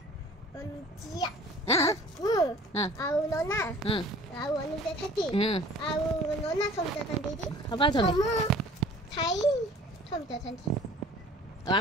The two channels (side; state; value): both; normal; correlation 0.48